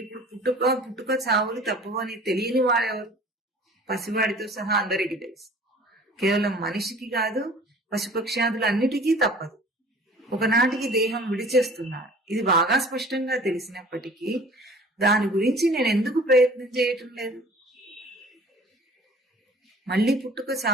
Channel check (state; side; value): normal; both; correlation 0.47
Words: పుట్టుక చావులు తప్పవని తెలియని వాడెవరు? పసివాడితో సహా అందరికీ తెలుసు. కేవలం మనిషికి కాదు, పశుపక్ష్యాదులు అన్నిటికీ తప్పదు. ఒకనాటికి దేహం విడిచేస్తున్నాడు. ఇది బాగా స్పష్టంగా తెలిసినప్పటికీ దాని గురించి నేను ఎందుకు ప్రయత్నం చేయటం లేదు? మళ్ళీ పుట్టుక